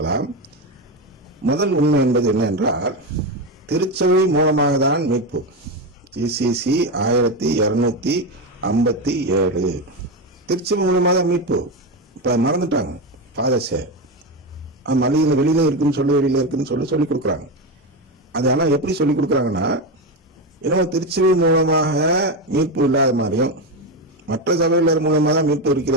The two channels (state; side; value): normal; both; correlation 0.14